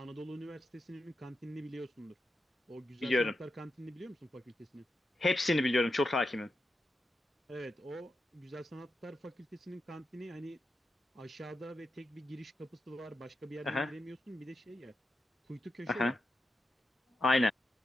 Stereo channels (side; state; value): both; normal; correlation 0.87